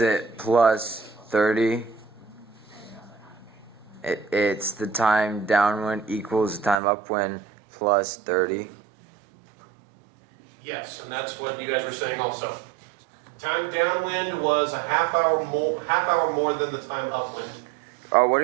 it plus 30? It's the time downwind equals the time upwind plus 30. Yes, and that's what you guys were saying also. Time downwind was a half hour more than the time upwind. Oh, what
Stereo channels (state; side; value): drops out; left; at 6.8 s